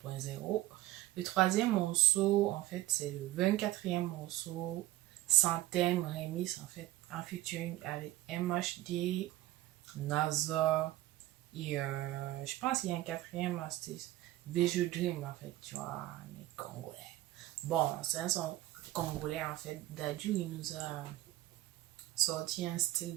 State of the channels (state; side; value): quieter; left; 15.8 dB